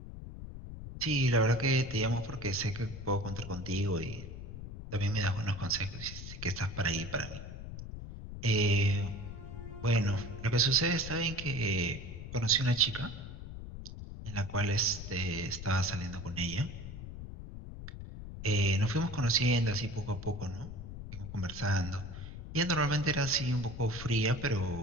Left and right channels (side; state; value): left; noise; rumble, 10 dB below the sound